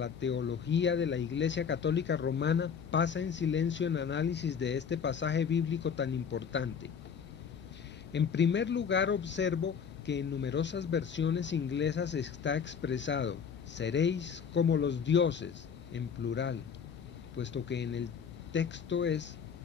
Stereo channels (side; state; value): right; quieter; 6.8 dB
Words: teología de la Iglesia Católica Romana, pasa en silencio en análisis de este pasaje bíblico tan importante. En primer lugar, observo que en numerosas versiones inglesas está expresado: seréis como los dioses, en plural, puesto que en el texto es